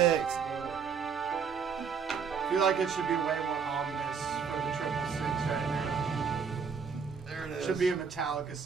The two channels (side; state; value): left; quieter; 6.3 dB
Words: feel like it should be way more ominous for the 666 right now. There it It is. should be a Metallica